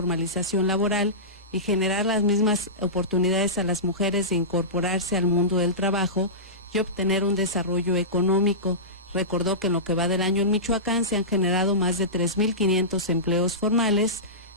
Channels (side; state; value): both; normal; correlation -0.19